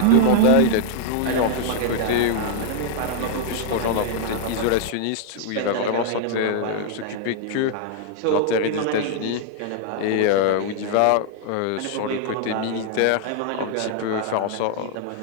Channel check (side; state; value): both; different; correlation -0.01